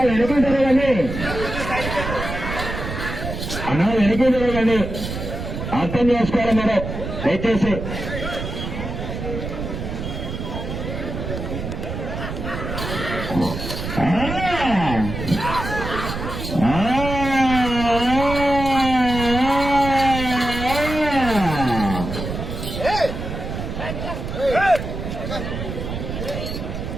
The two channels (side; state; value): right; noise; rumble, 6 dB below the sound